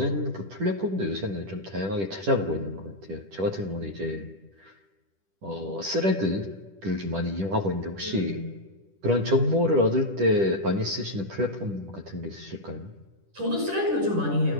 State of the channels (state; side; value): late; left; 10 ms